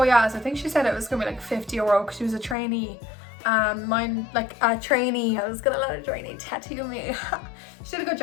yeah, so I think she said it was gonna be like €50 because she was a trainee. Mine, like a trainee, I was gonna let a trainee tattoo me. She did a good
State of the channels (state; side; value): drops out; right; at 2.6 s